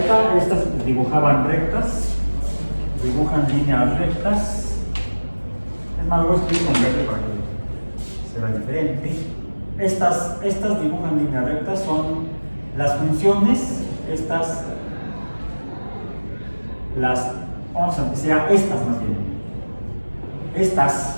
Estas dibujaban rectas, dibujan líneas rectas. Es más, voy a escribir con verde para que se vea diferente. Estas dibujan líneas rectas, son las funciones, vamos a decir estas más bien.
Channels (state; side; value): inverted; both; correlation -1.00